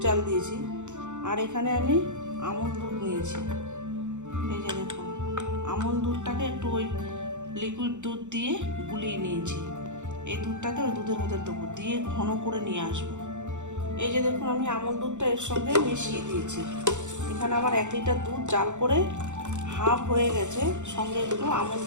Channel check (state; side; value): late; left; 0.84 ms